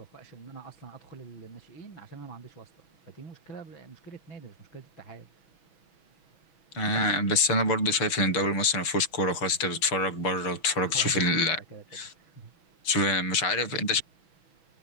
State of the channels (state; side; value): late; right; 6.2 ms